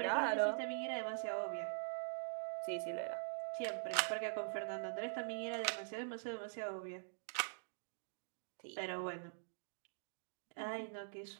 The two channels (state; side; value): silent; left; digital silence